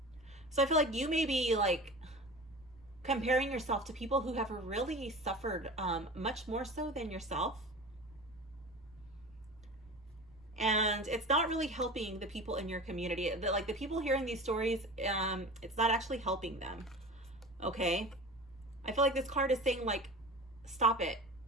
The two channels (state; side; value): noise; right; rumble, 26 dB below the sound